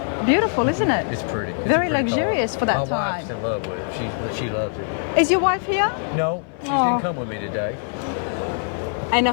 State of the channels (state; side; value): silent; right; 58 dB below the other